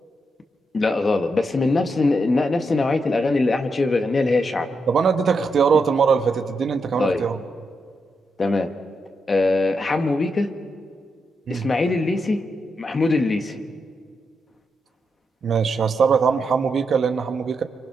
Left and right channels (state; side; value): normal; both; correlation 0.83